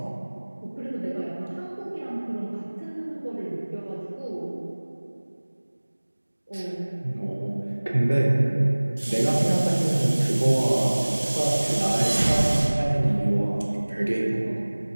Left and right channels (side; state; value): both; inverted; correlation -1.00